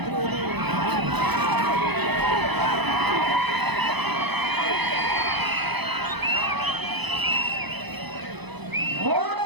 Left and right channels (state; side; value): late; left; 0.99 ms